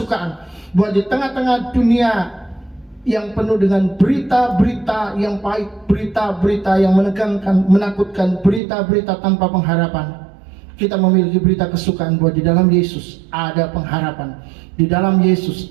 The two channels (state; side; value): drops out; left; at 8.6 s